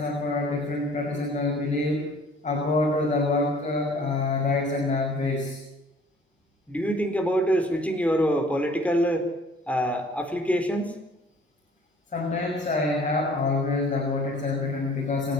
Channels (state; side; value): normal; both; correlation 0.53